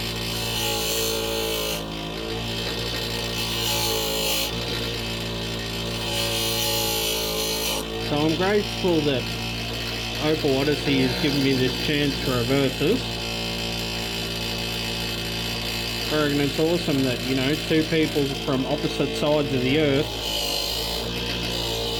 So I'm grateful that Opal Odessey has given me this chance to reverse this. I reckon it's awesome that, you know, two people from opposite sides of the earth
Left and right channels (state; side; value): identical; both; correlation 1.00